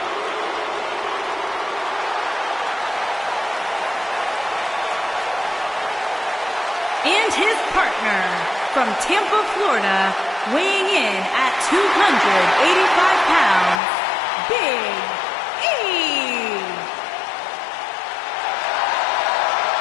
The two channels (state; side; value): drops out; right; at 13.8 s